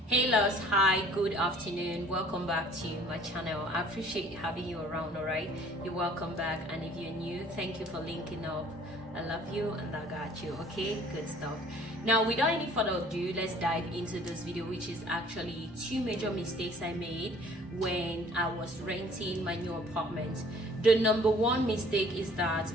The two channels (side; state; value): both; normal; correlation 0.53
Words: Hey loves, hi, good afternoon, welcome back to my channel. I appreciate having you around. All right, you're welcome back, and if you're new, thank you for linking up. I love you and I got you. Okay, good stuff. Now without any further ado, let's dive into this video, which is actually 2 major mistakes I made when I was renting my new apartment. The number 1 mistake is that,